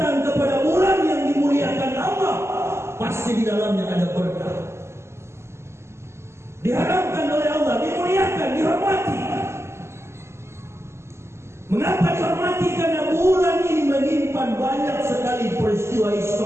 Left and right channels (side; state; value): left; late; 0.13 ms